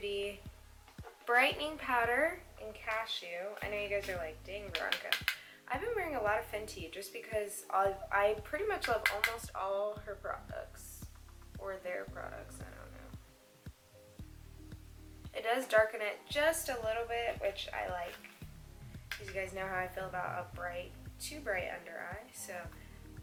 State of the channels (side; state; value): both; identical; correlation 1.00